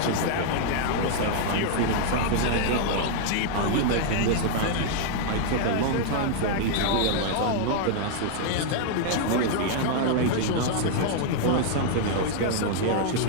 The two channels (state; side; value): different; both; correlation -0.01